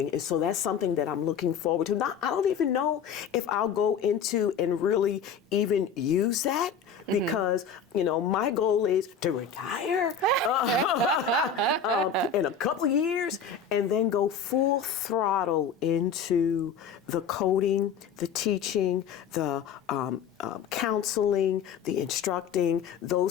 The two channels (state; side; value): quieter; right; 6.5 dB